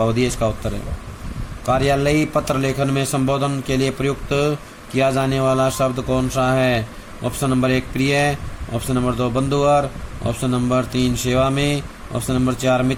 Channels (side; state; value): both; identical; correlation 1.00